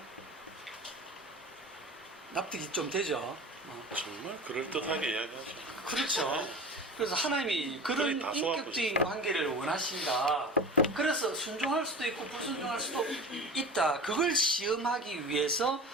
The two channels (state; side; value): normal; both; correlation 0.33